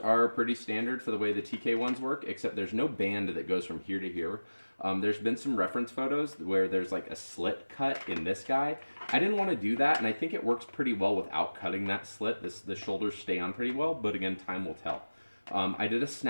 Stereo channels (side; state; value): both; inverted; correlation -1.00